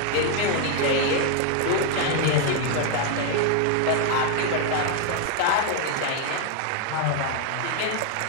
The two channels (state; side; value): different; both; correlation 0.00